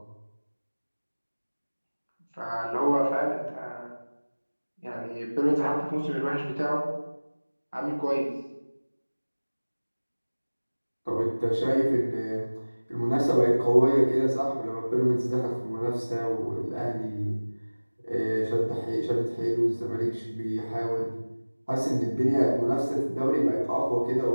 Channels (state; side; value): inverted; both; correlation -1.00